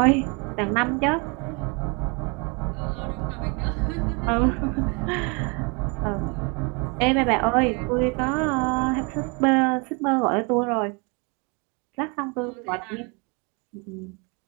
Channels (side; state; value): left; quieter; 31.0 dB